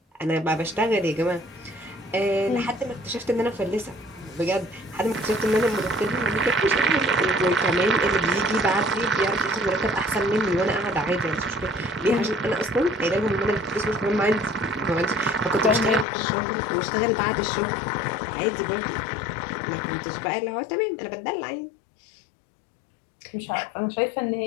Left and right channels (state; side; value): drops out; right; at 16.1 s